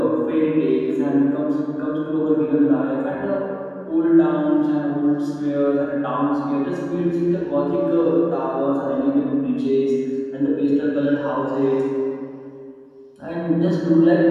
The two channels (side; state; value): both; identical; correlation 1.00